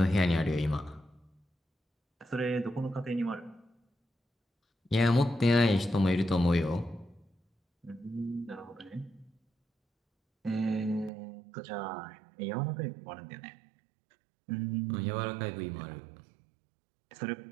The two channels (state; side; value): drops out; left; at 11.1 s